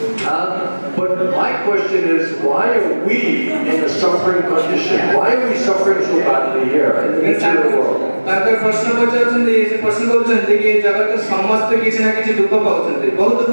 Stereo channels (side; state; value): both; inverted; correlation -1.00